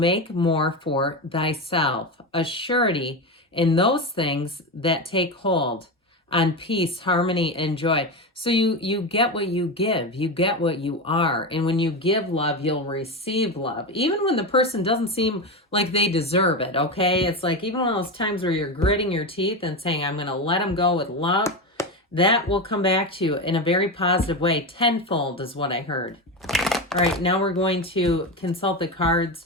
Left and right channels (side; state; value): both; normal; correlation 0.17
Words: more for thyself. A surety in those things that take hold on peace, harmony, and joy. So you get what you give. You get what you are. And when you give love, you'll receive love. Even when the person doesn't seem like they deserve it, okay? It's like even one of those times where you're gritting your teeth and saying, I'm going to let them go with love. That will come back to you in a very positive way. Tenfold is what I heard. All right, now we're going to consult the cards